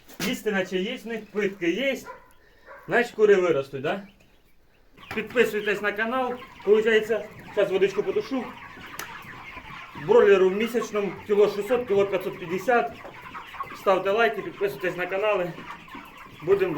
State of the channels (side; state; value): both; identical; correlation 1.00